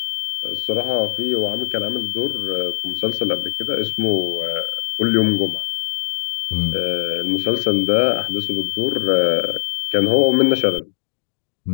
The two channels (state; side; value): silent; right; digital silence